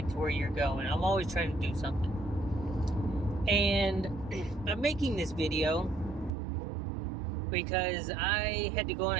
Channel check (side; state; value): left; drops out; at 6.3 s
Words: to where you're going. I'm always trying to do something. And I'm making this video because I had to go on